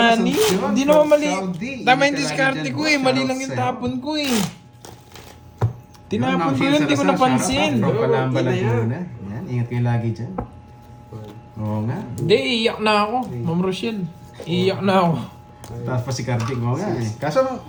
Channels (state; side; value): identical; both; correlation 1.00